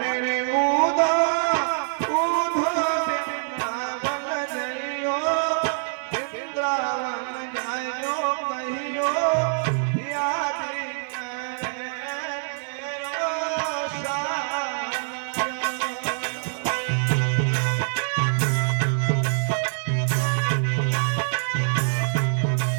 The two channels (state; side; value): silent; left; 56 dB below the other